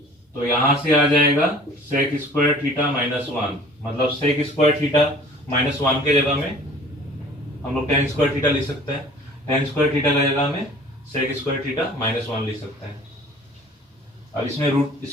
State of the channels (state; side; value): normal; both; correlation 0.49